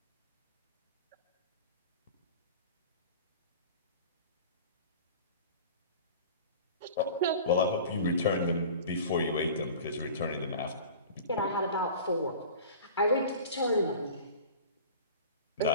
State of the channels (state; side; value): inverted; both; correlation -0.39